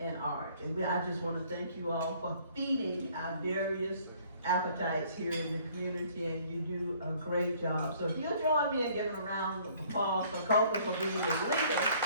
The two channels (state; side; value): inverted; both; correlation -0.59